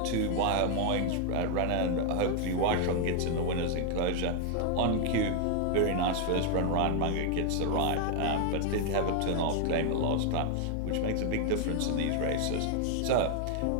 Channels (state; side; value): different; both; correlation 0.00